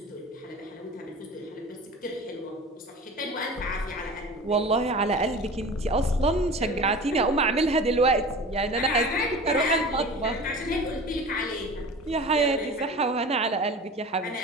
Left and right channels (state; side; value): normal; both; correlation 0.37